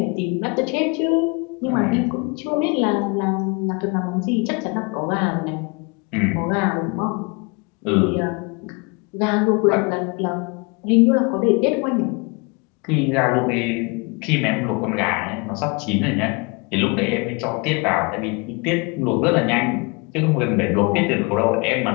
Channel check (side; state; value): right; quieter; 30.3 dB